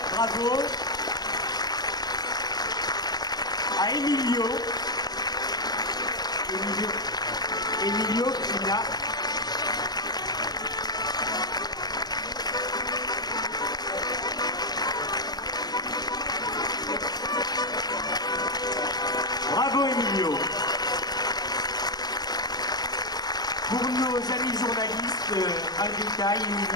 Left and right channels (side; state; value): right; late; 0.20 ms